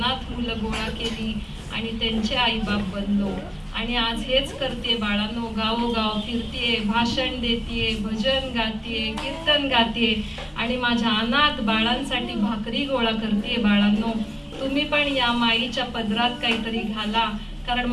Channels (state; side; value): identical; both; correlation 1.00